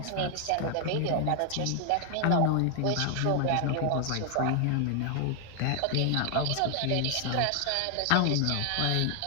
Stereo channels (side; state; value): both; different; correlation 0.00